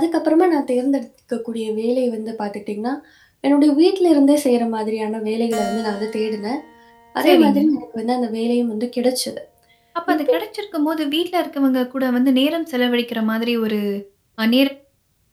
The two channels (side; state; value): both; identical; correlation 1.00